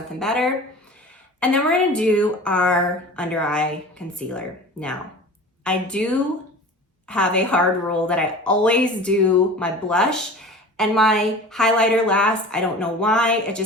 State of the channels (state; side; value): normal; both; correlation 0.38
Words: better. And then we're gonna do our under eye concealer. Now, I do have a hard rule that I always do my blush and my highlighter last. I don't know why. I